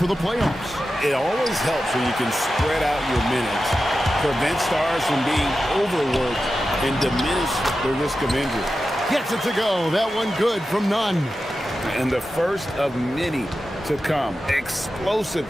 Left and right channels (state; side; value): normal; both; correlation 0.92